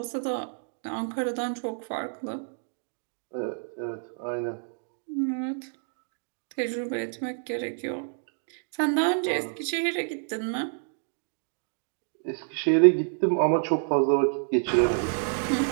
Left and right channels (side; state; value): left; silent; digital silence